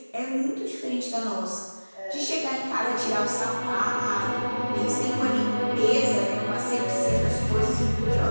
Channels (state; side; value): inverted; both; correlation -1.00